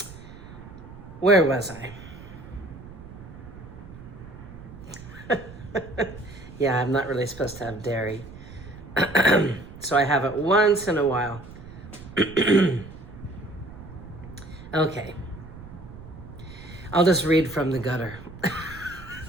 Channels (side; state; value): right; noise; rumble, 15 dB below the sound